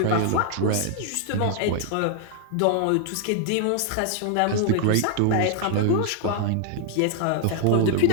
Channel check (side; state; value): both; different; correlation 0.00